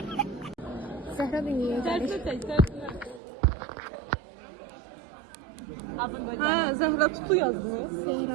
Zəhra dünyaya gəlir. Ha, Zəhra Tutu yazmış.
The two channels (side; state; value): left; drops out; at 3.2 s